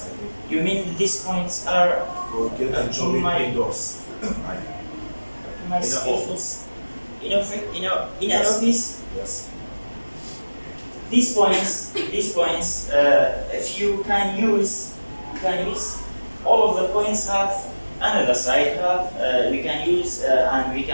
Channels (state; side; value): inverted; both; correlation -1.00